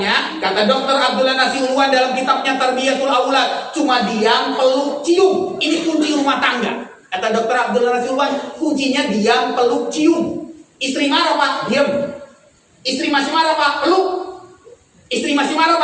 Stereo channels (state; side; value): identical; both; correlation 1.00